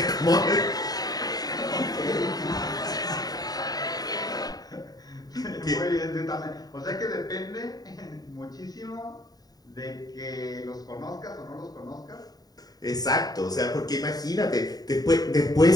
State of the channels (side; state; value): right; late; 0.18 ms